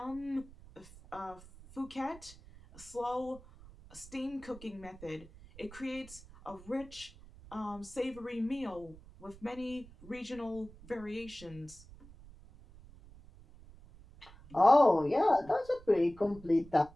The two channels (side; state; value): right; noise; rumble, 20 dB below the sound